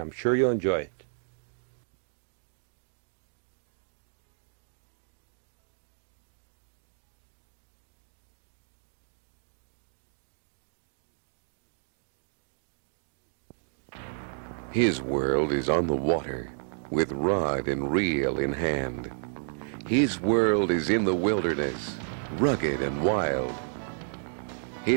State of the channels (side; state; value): left; silent; digital silence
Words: sure you'll enjoy it. His world is on the water, with rod and reel in hand. His world is in the wilderness, rugged and wild.